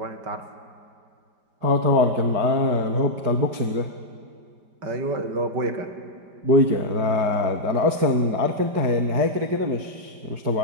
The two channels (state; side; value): late; left; 5.1 ms